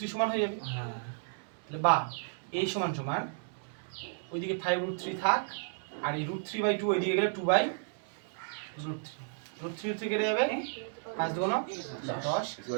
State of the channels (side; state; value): left; silent; digital silence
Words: সমান হয়ে যাবে। হ্যাঁ তাহলে বা এই সমান সমান ওইদিকে 5√3 থাক, আর এই √3/2 ওইদিকে গেলে 2/√3 কেটে যাবে। 5 2 9 10